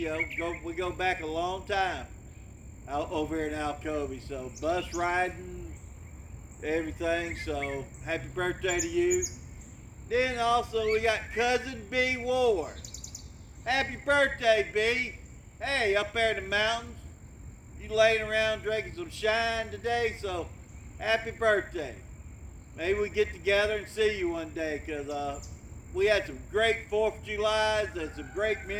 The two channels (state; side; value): identical; both; correlation 1.00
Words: We go back a long time out over here in Alcovy. So bus riding, everything. So happy birthday to you. Then also we got cousin B Ward. Happy birthday, B. Hey, up there in the mountains. You laying around drinking some shine today, so happy birthday. Maybe we get together and see you one day, because we had some great 4th of Julys and some great